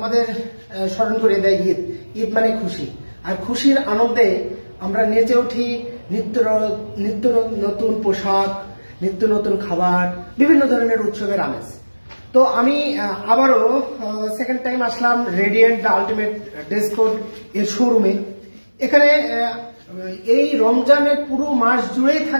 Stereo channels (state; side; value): inverted; both; correlation -1.00